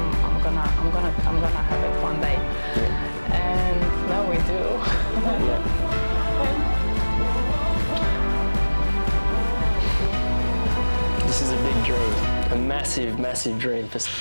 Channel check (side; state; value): both; inverted; correlation -1.00